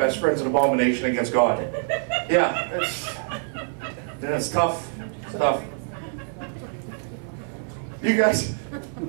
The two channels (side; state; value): left; silent; 62 dB below the other